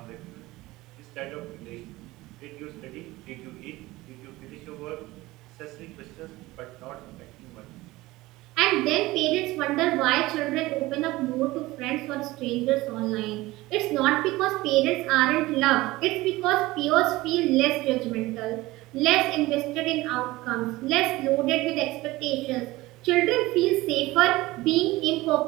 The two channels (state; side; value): quieter; left; 19.3 dB